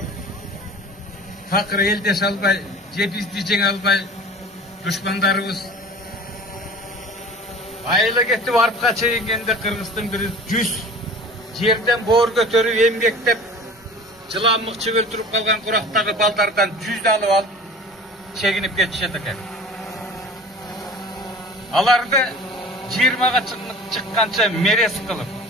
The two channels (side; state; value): both; normal; correlation 0.41